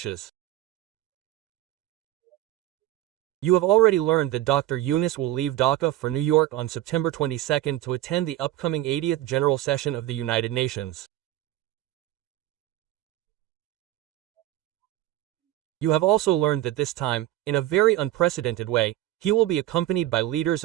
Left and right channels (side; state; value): left; quieter; 14.8 dB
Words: You have already learned that Dr. Yunus will leave Dhaka for New York on September 22nd to attend the upcoming 80th General Session of the United Nations. You have also learned that this time, in a very unprecedented way, he will be accompanied by leaders